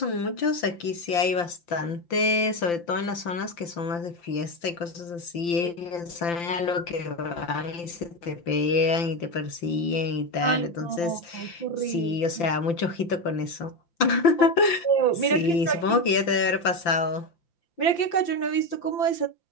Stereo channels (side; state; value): right; late; 5.8 ms